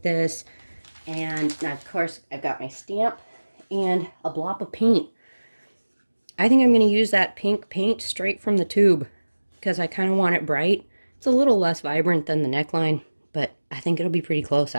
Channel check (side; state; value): both; inverted; correlation -1.00